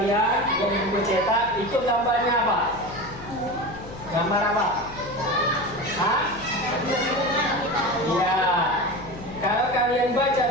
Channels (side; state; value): left; noise; hum, 15 dB below the sound